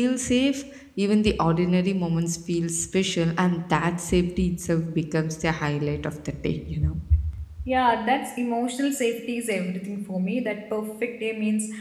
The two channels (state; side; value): identical; both; correlation 1.00